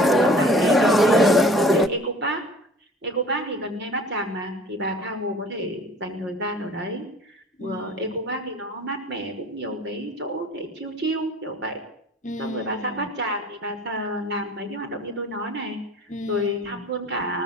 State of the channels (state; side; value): normal; both; correlation 0.46